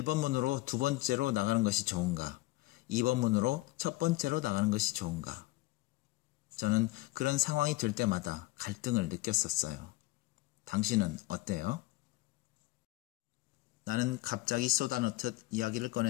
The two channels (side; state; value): right; quieter; 20.0 dB